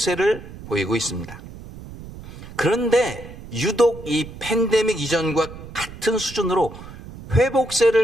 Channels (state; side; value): noise; right; rumble, 15 dB below the sound